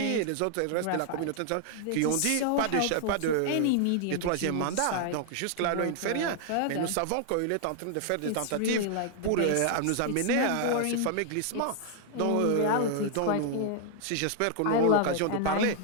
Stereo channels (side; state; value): both; different; correlation 0.00